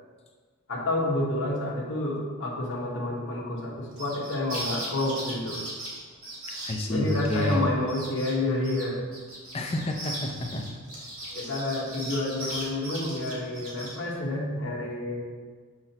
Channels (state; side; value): normal; both; correlation 0.35